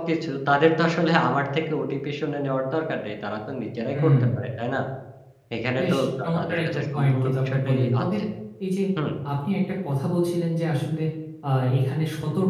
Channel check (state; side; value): identical; both; correlation 1.00